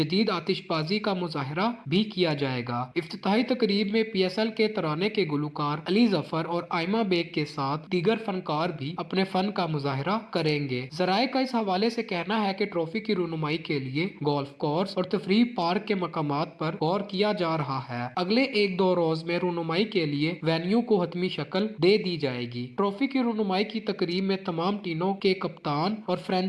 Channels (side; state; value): both; identical; correlation 1.00